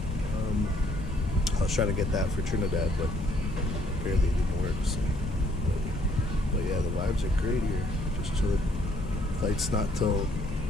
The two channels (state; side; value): normal; both; correlation 0.66